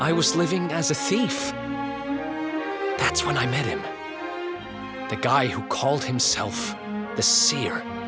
I was living as a thief. That's when I met him. The guy who called himself the Seer.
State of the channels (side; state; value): both; identical; correlation 1.00